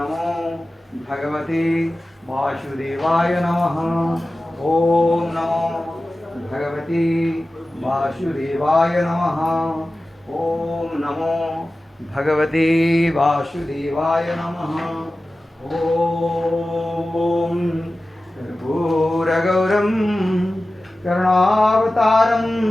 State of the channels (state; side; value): normal; both; correlation 0.95